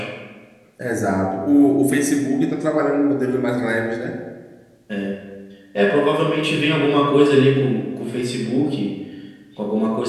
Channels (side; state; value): both; identical; correlation 1.00